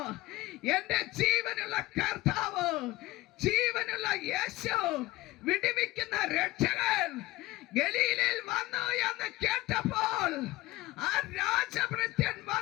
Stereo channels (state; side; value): quieter; right; 18.6 dB